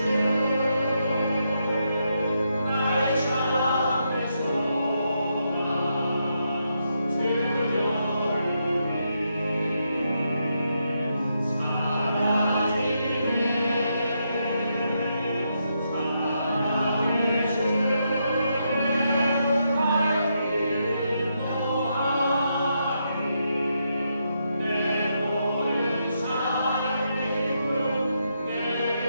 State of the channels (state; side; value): inverted; both; correlation -0.81